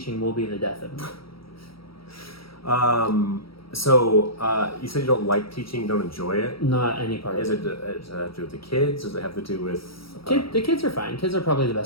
will be the death of me. So you said you don't like teaching, you don't enjoy it? Not any part of it. Does it have to do with the kids? Does it have to do with... The kids are fine. Kids are probably the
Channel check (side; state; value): right; late; 0.75 ms